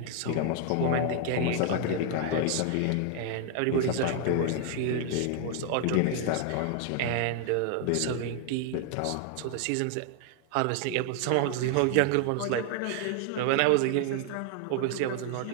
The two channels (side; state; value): both; different; correlation 0.00